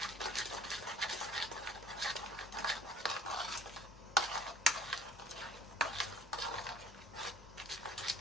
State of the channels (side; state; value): both; normal; correlation 0.52